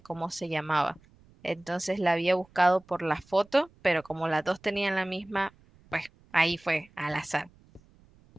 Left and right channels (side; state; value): right; noise; rumble, 29 dB below the sound